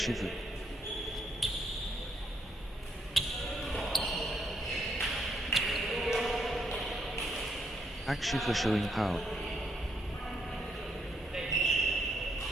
Akshif showing power.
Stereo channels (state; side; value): normal; both; correlation 0.75